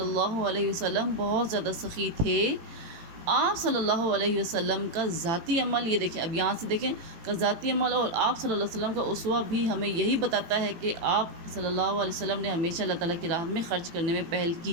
اللہ علیہ وسلم بہت زیادہ سخی تھے۔ آپ صلی اللہ علیہ وسلم کا ذاتی عمل، یہ دیکھیں اب یہاں سے دیکھیں کہ ذاتی عمل اور آپ صلی اللہ علیہ وسلم کا اسوہ بھی ہمیں یہی بتاتا ہے کہ آپ صلی اللہ علیہ وسلم نے ہمیشہ اللہ تعالیٰ کی راہ میں خرچ کرنے میں پہل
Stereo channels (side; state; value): left; late; 18 ms